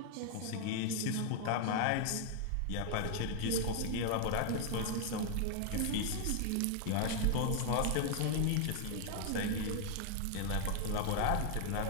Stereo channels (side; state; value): both; different; correlation 0.00